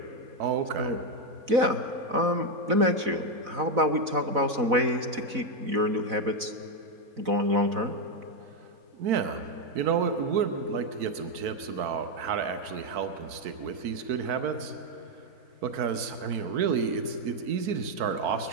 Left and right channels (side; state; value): left; late; 4.0 ms